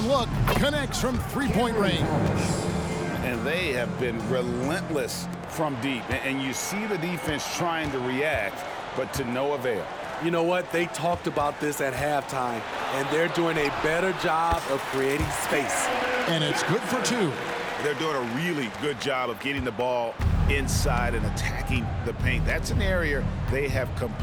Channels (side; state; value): both; identical; correlation 1.00